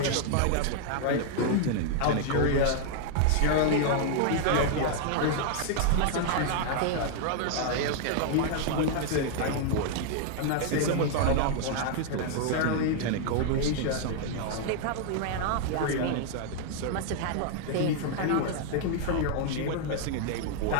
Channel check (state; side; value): different; both; correlation 0.00